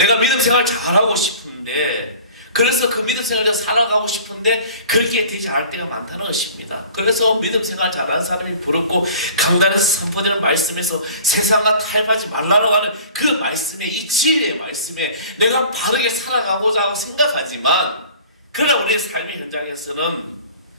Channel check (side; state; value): both; inverted; correlation -0.45